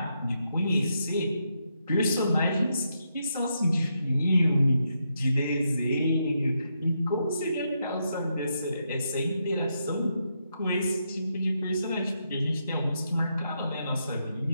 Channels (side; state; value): both; inverted; correlation -0.81